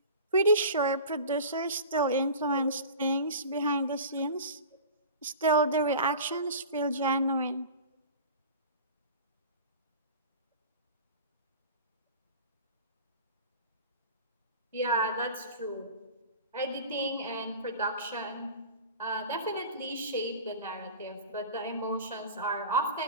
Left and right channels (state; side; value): inverted; both; correlation -0.37